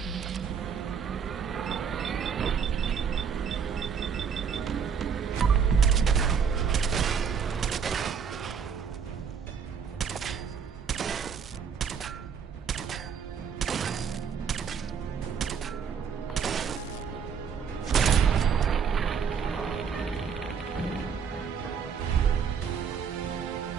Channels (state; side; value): quieter; left; 6.8 dB